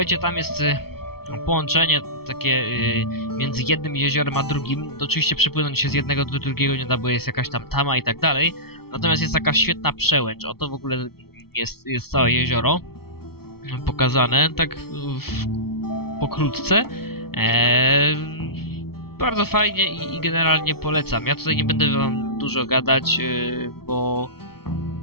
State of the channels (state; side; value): late; right; 0.95 ms